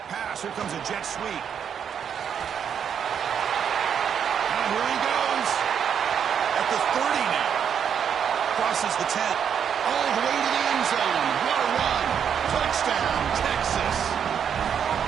pass. Here comes a jet sweep. And here he goes. At the 30 now. Crosses the 10. All the way to the end zone. What a run. Touchdown, Texas.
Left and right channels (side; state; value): left; quieter; 8.0 dB